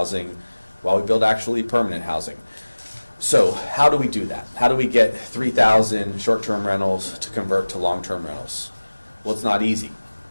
while we build actually permanent housing. So how do we do that? How do we get 3,000 short-term rentals to convert to long-term rentals? Well, it's not easy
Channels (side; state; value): both; inverted; correlation -1.00